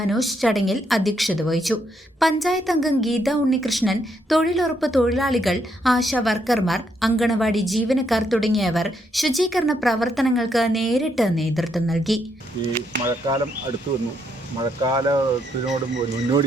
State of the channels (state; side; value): normal; both; correlation 0.76